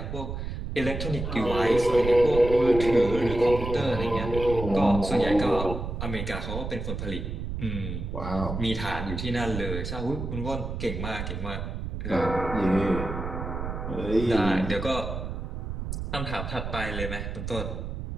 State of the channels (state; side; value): noise; right; rumble, 5 dB below the sound